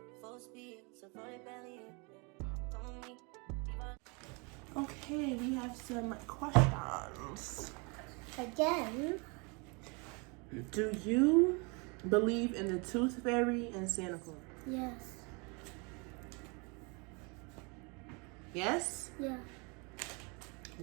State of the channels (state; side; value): quieter; left; 30.9 dB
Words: Full speed, so roll it belly, yeah. Come with me, leave all. Okay, we have some questions. again. Do you believe in the Tooth Fairy and Santa Claus? Yes. Yes? Yeah.